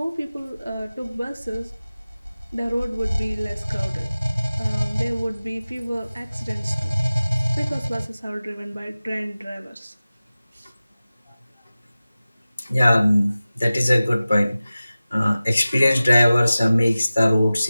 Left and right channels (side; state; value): both; inverted; correlation -0.97